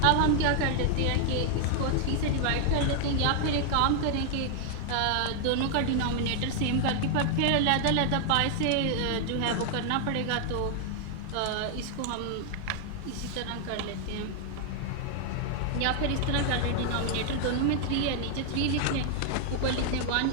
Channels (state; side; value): different; both; correlation 0.00